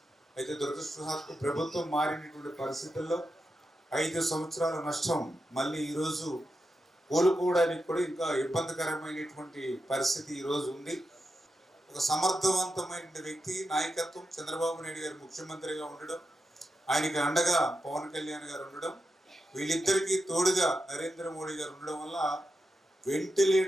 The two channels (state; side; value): normal; both; correlation 0.88